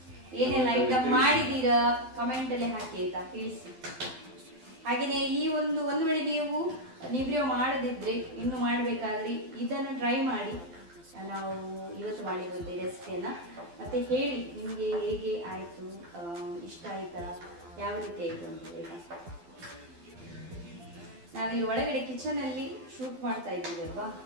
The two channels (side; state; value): left; late; 12 ms